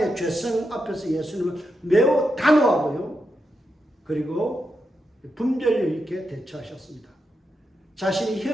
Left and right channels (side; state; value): both; normal; correlation 0.85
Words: 죄성 앞에서 예수님은 매우 단호하고요. 그리고 분별력 있게 대처하셨습니다. 자신이